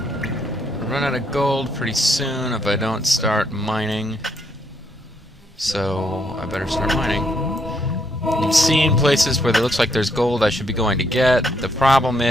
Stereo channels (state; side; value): normal; both; correlation 0.73